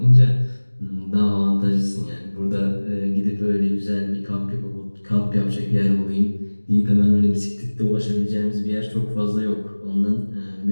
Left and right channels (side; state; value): both; inverted; correlation -1.00